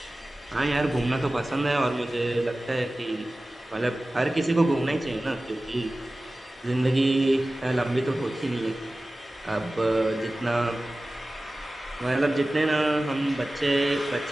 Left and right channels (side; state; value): both; normal; correlation 0.96